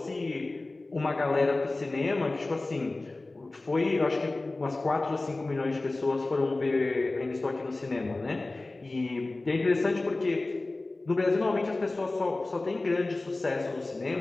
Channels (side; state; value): right; quieter; 3.1 dB